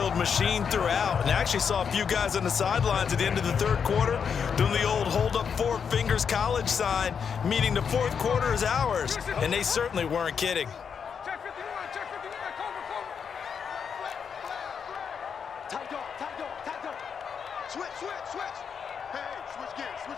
machine throughout. And I actually saw a few guys on the sidelines at the end of the third quarter doing the old hold up 4 fingers college sign, meaning the fourth quarter is ours. And they certainly weren't kidding. Check 59, cover. Tight dog. Switch. Hey, switch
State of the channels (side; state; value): right; quieter; 6.8 dB